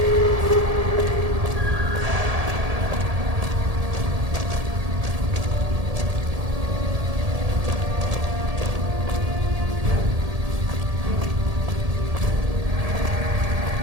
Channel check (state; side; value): late; left; 1.7 ms